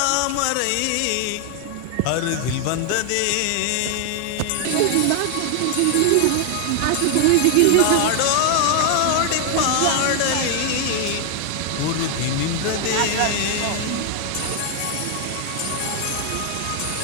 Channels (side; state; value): both; different; correlation 0.00